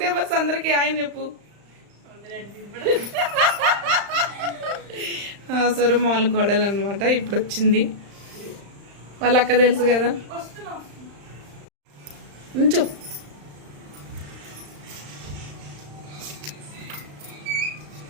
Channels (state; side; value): late; left; 35 ms